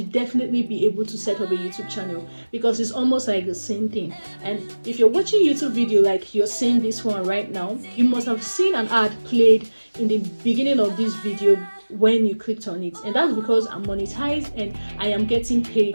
definitely be able to set up a YouTube channel, because it's almost like the same thing. And if you're watching YouTube video like you're seeing this one right now, you must have seen an ad played in the beginning of this video when you clicked on it, and that's because I'm monetized and I am getting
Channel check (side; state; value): both; inverted; correlation -1.00